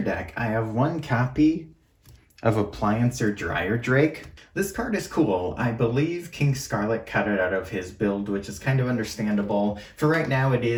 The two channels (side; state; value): both; identical; correlation 1.00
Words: deck, I have 1 copy of Appliancer Dryer Drake. This card is cool. I believe King Scarlet cut it out of his build, which is kind of understandable. For right now, it